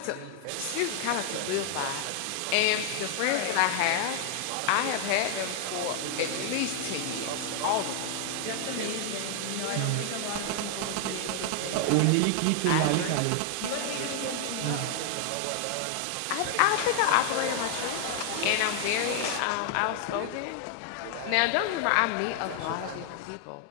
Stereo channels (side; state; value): both; different; correlation 0.00